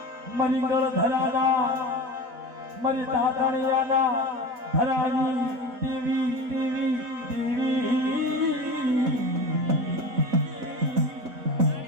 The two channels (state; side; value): late; left; 4.4 ms